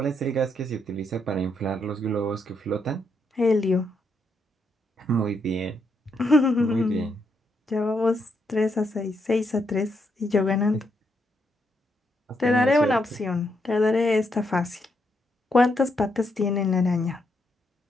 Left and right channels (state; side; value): normal; both; correlation 0.78